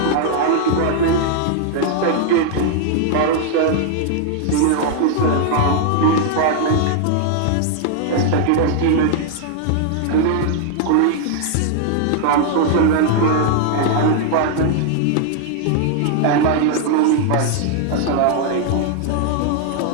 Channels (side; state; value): both; different; correlation 0.00